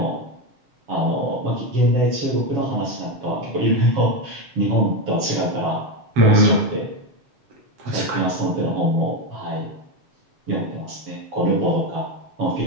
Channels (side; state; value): left; late; 7.4 ms